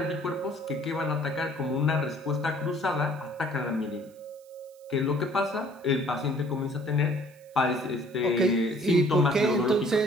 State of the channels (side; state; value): right; noise; hiss, 29 dB below the sound